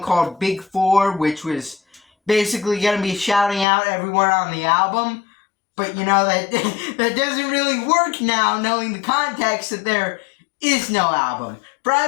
called Big Four, which was basically going to be shouting out everyone on the album, but you know, that doesn't really work now, knowing the context that there is no album.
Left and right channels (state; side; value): drops out; right; at 3.7 s